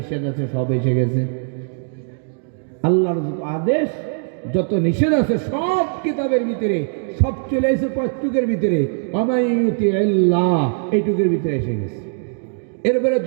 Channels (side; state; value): left; silent; 61 dB below the other